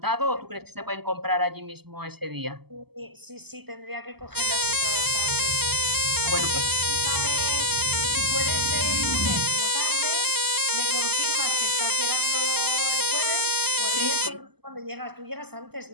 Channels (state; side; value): late; left; 0.97 ms